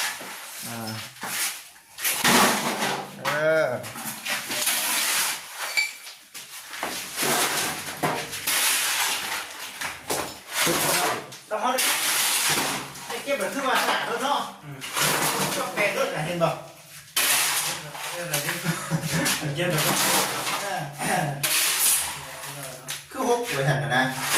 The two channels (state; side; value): identical; both; correlation 1.00